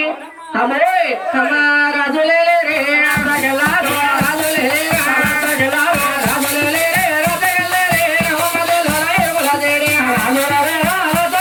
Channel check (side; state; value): both; identical; correlation 1.00